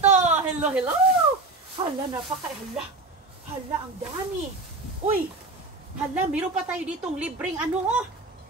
Hello! Hala, hala, ang dami. Uy, hala, meron pa tayo ditong libreng ano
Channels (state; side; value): quieter; left; 3.2 dB